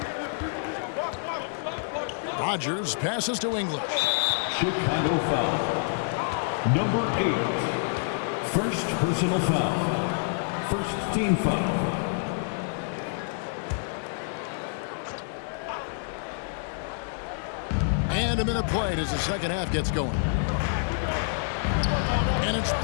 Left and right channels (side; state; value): right; silent; 60 dB below the other